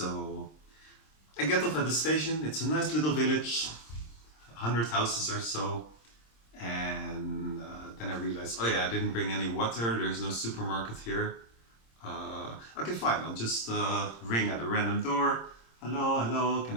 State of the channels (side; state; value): right; late; 26 ms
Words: I get off at the station. It's a nice little village, 100 houses or so, and then I realized, oh yeah, I didn't bring any water. There's no supermarket here. Okay, fine. I'll just ring at a random door. Hello, can